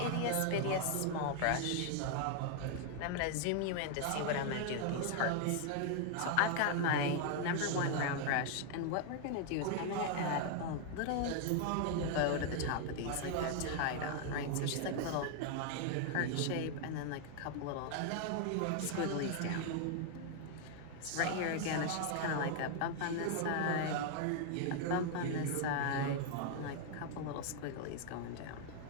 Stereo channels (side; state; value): both; different; correlation 0.00